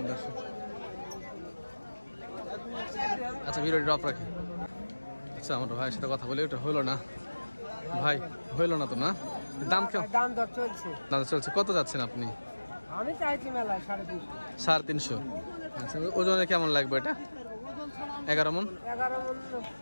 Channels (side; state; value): both; inverted; correlation -1.00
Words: দর্শক। আচ্ছা, ভিডিওটি ড্রপ রাখি। আচ্ছা, আমার ভাইয়ের সাথে কথা বলে, ওটা হলো না ভাই, হইলো না তো না? দাম কেমন? দাম দর চলছে। দাম চলছে। কত যাচ্ছেন আপনি? আমি চাইছি মেলায় 350। 350। আচ্ছা, ওজনে কেমন লাগবে এটা? 11 মন। 11 মন